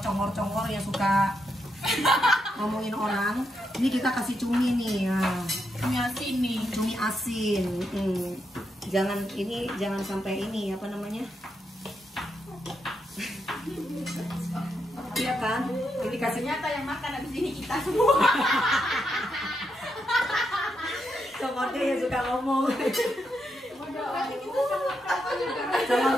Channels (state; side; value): normal; both; correlation 0.82